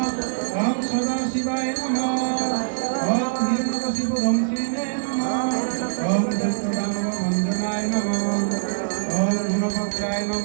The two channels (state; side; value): silent; left; 63 dB below the other